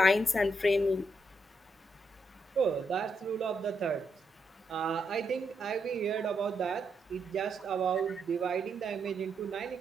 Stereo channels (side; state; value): both; normal; correlation 0.81